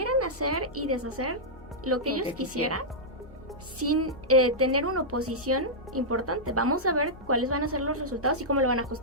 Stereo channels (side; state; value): left; noise; hum, 21 dB below the sound